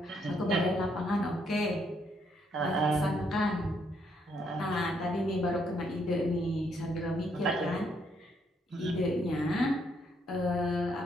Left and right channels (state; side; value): normal; both; correlation 0.73